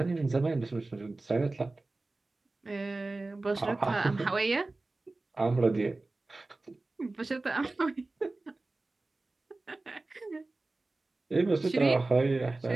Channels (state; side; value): quieter; left; 3.2 dB